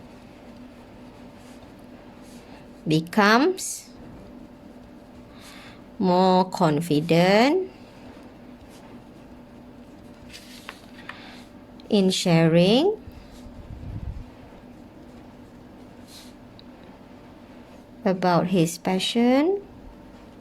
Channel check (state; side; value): identical; both; correlation 1.00